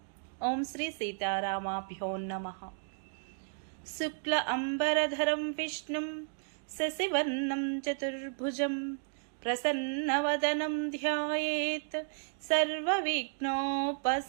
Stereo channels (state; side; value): silent; left; digital silence